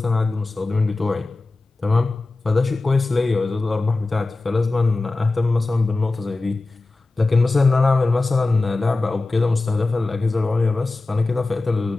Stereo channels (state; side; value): quieter; right; 3.3 dB